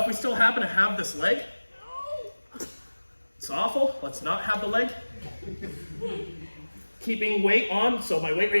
if we still happen to have this leg, it's awful. Let's not have the leg. Keeping weight on, so my weight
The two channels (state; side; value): inverted; both; correlation -1.00